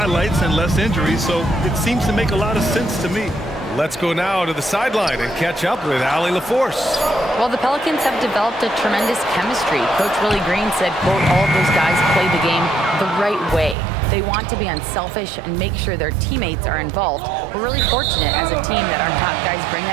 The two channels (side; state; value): left; drops out; at 13.8 s